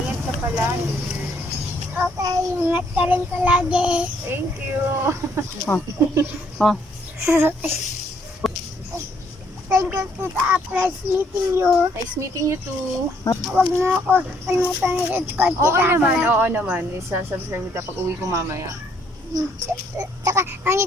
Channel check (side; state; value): both; normal; correlation 0.68